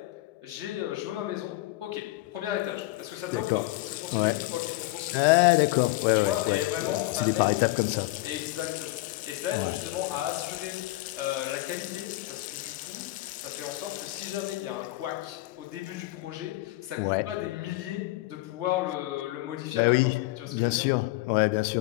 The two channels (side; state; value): right; quieter; 19.0 dB